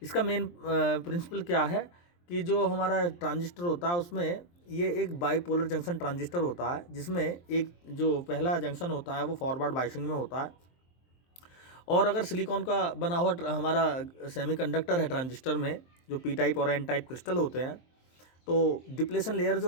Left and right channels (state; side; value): late; right; 23 ms